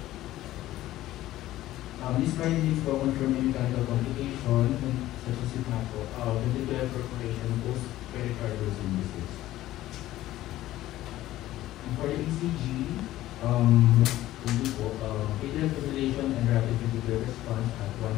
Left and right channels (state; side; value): quieter; right; 15.0 dB